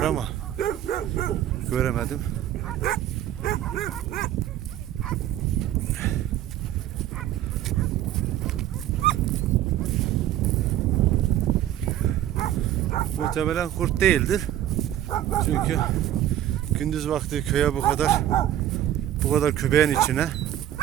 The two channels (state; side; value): quieter; left; 12.3 dB